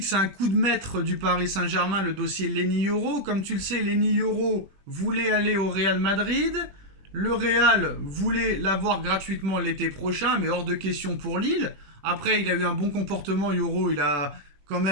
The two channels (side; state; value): left; late; 21 ms